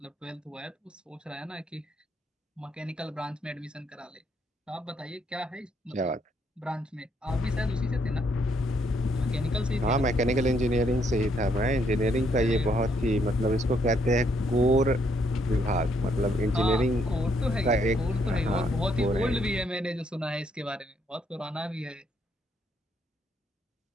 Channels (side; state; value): both; normal; correlation 0.72